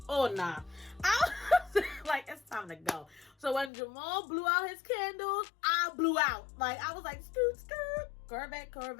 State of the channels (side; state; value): right; drops out; at 3.7 s